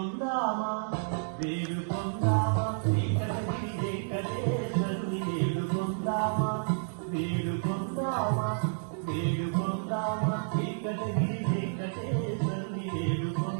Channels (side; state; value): left; silent; digital silence